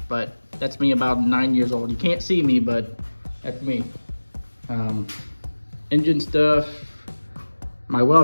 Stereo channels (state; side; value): inverted; both; correlation -1.00